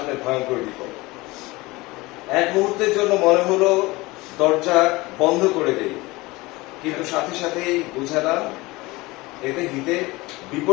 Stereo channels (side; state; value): right; quieter; 21.7 dB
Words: ভয়ঙ্কর বিপদ। এক মুহূর্তের জন্য মনে হলো দরজা বন্ধ করে দেই, কিন্তু সাথে সাথেই বুঝালাম এতে হিতে